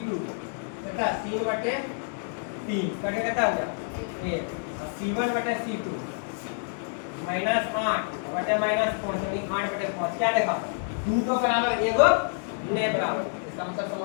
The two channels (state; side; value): silent; right; 59 dB below the other